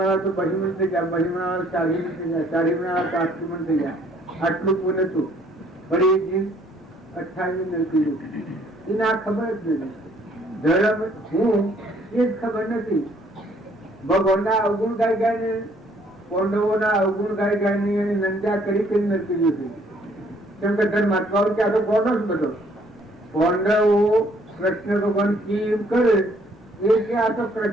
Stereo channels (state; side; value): normal; both; correlation 0.63